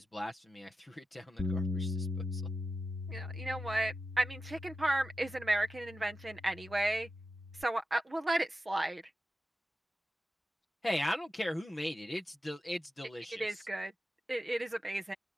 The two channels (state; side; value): normal; both; correlation 0.91